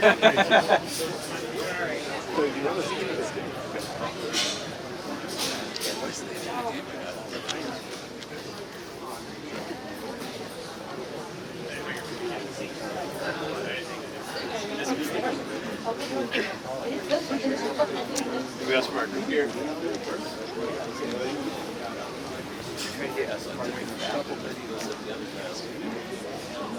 got some marker here.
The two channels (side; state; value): both; identical; correlation 1.00